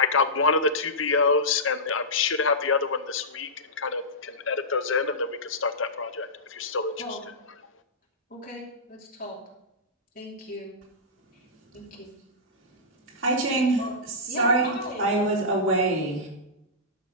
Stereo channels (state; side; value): normal; both; correlation -0.16